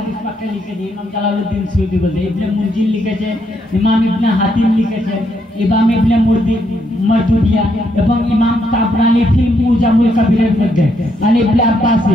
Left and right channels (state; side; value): normal; both; correlation 0.76